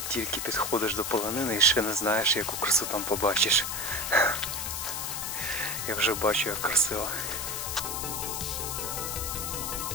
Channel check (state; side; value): noise; left; hiss, 3 dB below the sound